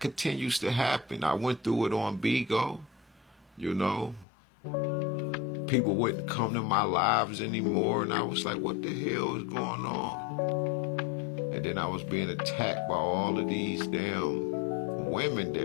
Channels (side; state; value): right; drops out; at 4.2 s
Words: to happen. I went through it on Bigo. People wouldn't come to my lives anymore, and I was like, what the hell is going on? And then I was being attacked by all of these damn women